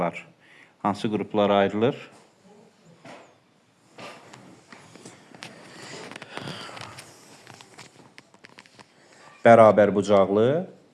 hansı qruplara ayrılır? Bərabər bucaqlı,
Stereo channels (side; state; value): both; identical; correlation 1.00